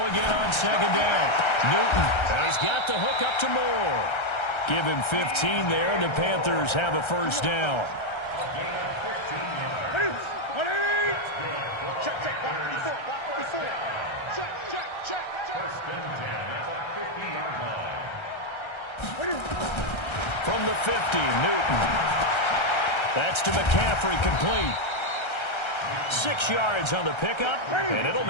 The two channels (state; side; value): late; right; 1.3 ms